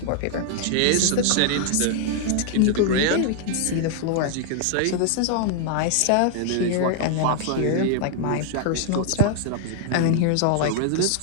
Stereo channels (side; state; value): both; different; correlation 0.00